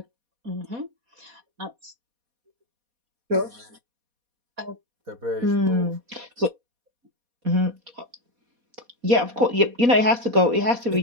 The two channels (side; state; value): left; late; 4.2 ms